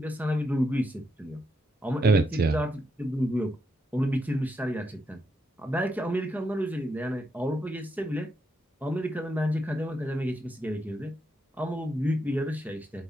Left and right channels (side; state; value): both; normal; correlation 0.80